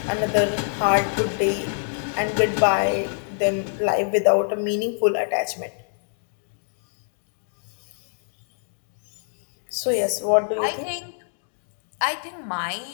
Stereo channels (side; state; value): right; silent; digital silence